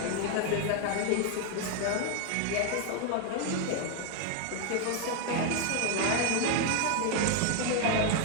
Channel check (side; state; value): both; different; correlation 0.00